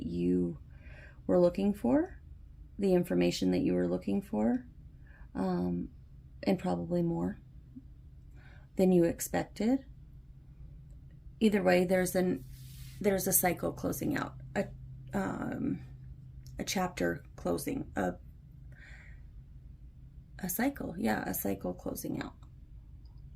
you were looking for, the information that you were looking for, and probably more than you expected. Either way, there's a cycle closing out, a chapter closing, a cycle, yeah, a cycle closing out.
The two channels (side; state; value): both; identical; correlation 1.00